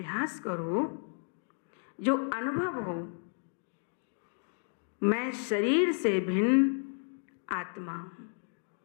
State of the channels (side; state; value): right; silent; 56 dB below the other